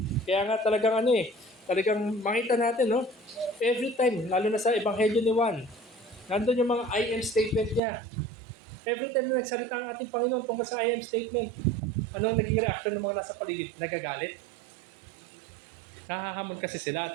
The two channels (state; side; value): drops out; left; at 7.8 s